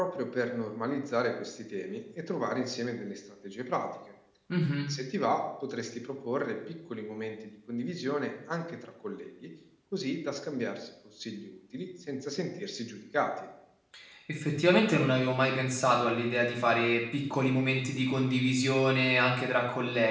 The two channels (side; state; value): both; identical; correlation 1.00